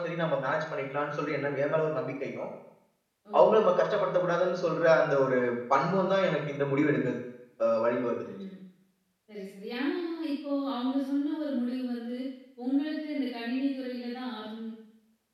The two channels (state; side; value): identical; both; correlation 1.00